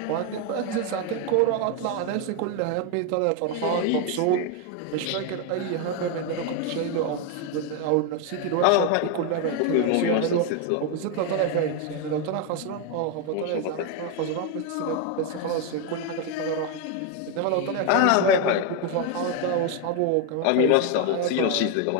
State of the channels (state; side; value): different; both; correlation 0.01